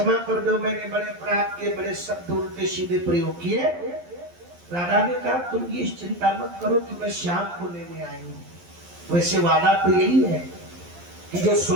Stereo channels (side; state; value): left; late; 11 ms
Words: कर दो, मैंने बड़े अपराध के बड़े शब्द उल्टे सीधे प्रयोग किए। राधा ने कहा, तुम ये चिंता मत करो कि मैं श्याम को लेने आई हूँ। वैसे वादा तो यही है कि जो